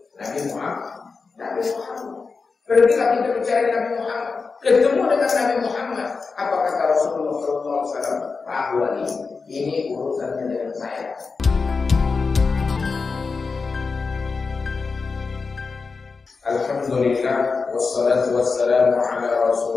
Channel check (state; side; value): quieter; right; 4.6 dB